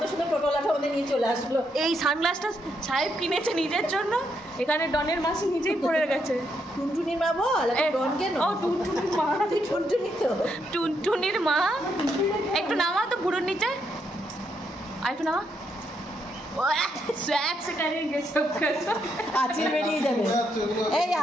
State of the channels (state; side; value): normal; both; correlation 0.78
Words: সুন্দর টোটোলাটা ওদের নিয়ে চলে আসলো। এই সানগ্লাসটা সাহেব কিনেছে নিজের জন্য, এখানে ডনের মাসি নিজেই পড়ে গেছে। টুনটুনির মা বল, ডন কেন? ও টুনটুনির মা, টুনটুনি তো টুনটুনির মা। একটু নামা তো বুড়োর নিচে, আর একটু নামা। আঁচিল বেরিয়ে যাবে, এই